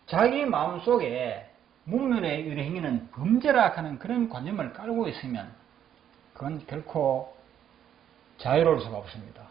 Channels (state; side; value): quieter; left; 9.8 dB